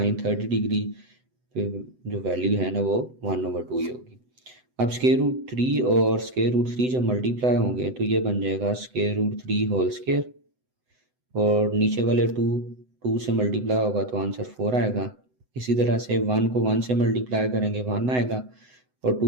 30 डिग्री जो वैल्यू है ना वो 1/2 ही होगी। अब √3 और √3 जब मल्टीप्लाई होंगे तो ये बन जाएगा √3 होल स्क्वायर और नीचे वाले 2 से मल्टीप्लाई होगा तो आंसर 4 आएगा। इसी तरह से 1 को 1 से मल्टीप्लाई करेंगे 1 आएगा और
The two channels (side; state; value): left; late; 7.9 ms